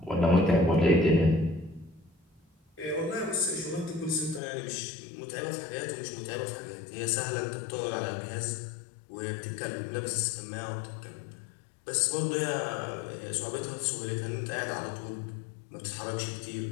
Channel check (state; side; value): drops out; right; at 4.4 s